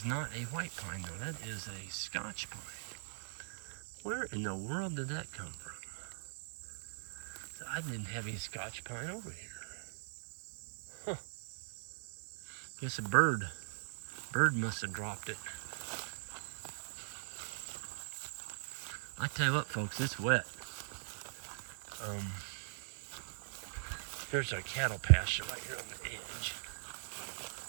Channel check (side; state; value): left; silent; digital silence